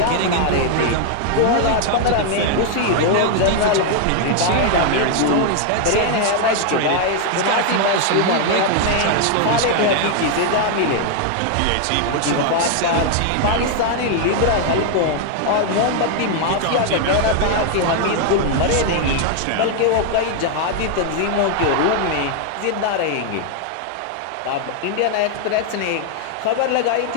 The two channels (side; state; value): both; different; correlation 0.00